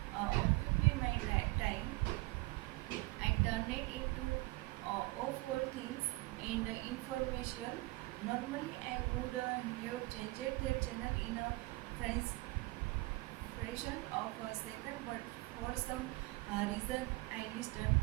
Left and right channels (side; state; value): left; quieter; 22.8 dB